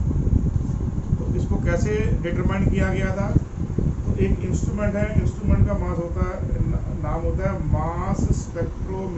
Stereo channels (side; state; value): both; identical; correlation 1.00